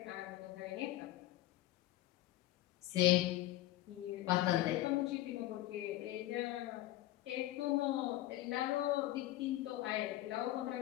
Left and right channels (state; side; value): quieter; right; 15.7 dB